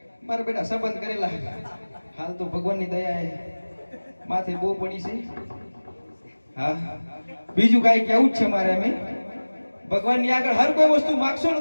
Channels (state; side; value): inverted; both; correlation -1.00